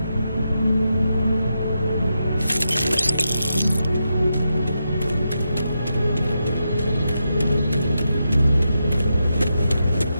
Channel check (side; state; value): both; inverted; correlation -0.86